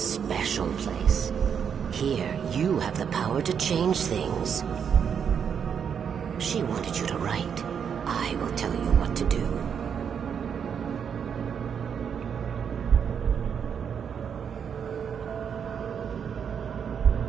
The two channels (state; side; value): quieter; left; 7.4 dB